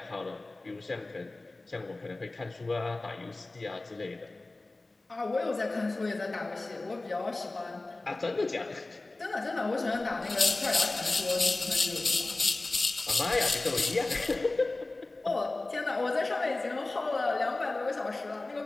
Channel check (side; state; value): right; quieter; 3.0 dB